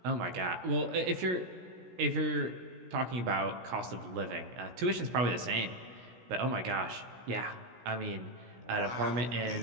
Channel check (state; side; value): late; left; 16 ms